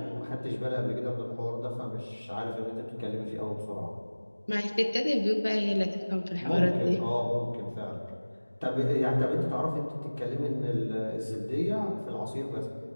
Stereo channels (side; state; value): both; inverted; correlation -1.00